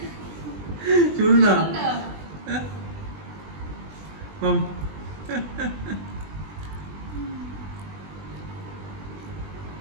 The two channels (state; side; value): late; left; 20 ms